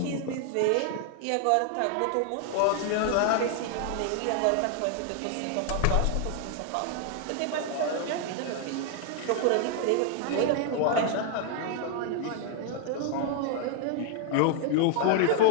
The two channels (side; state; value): both; different; correlation 0.00